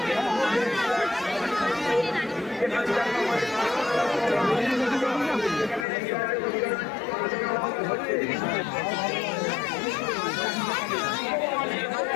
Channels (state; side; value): drops out; right; at 5.9 s